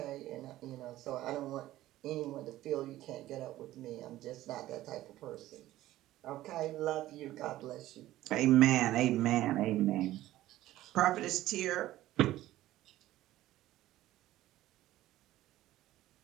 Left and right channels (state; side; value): quieter; left; 15.1 dB